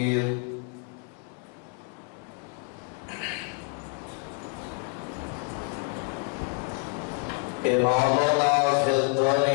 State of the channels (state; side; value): quieter; right; 32.9 dB